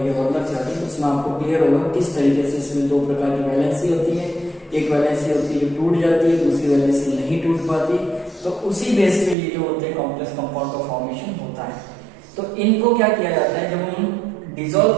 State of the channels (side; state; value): left; drops out; at 9.3 s